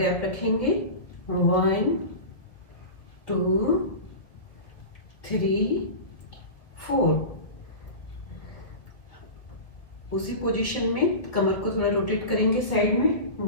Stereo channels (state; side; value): late; right; 1.7 ms